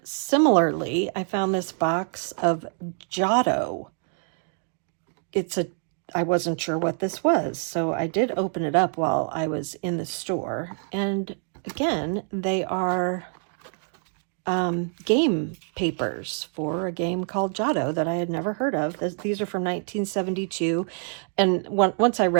similarly, I found this box of Giotto. I wasn't sure what this was, so I did open it up while I was in the store. And again, they are game papers for a game called Giotto that I had never heard of. These are from 1972. And once I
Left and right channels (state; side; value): silent; left; 56 dB below the other